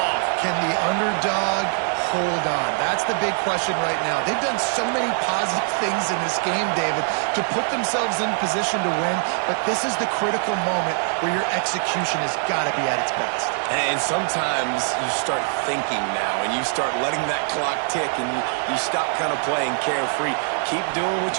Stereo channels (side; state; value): left; silent; 59 dB below the other